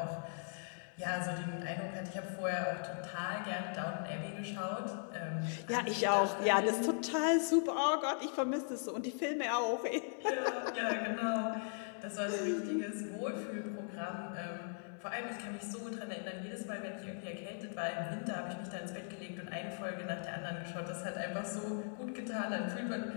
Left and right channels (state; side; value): silent; right; 52 dB below the other